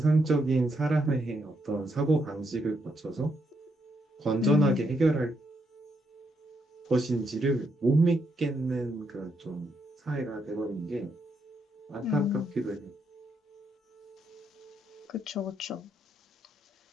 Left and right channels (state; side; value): normal; both; correlation 0.78